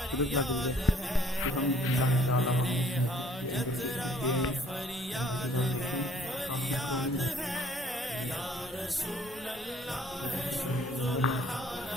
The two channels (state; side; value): normal; both; correlation 0.59